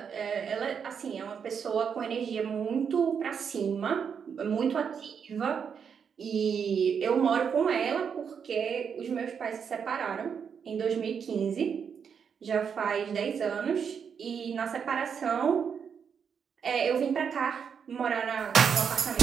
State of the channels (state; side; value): quieter; left; 7.0 dB